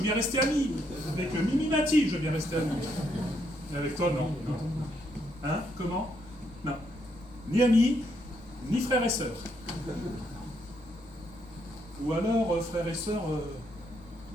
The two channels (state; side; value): normal; both; correlation 0.75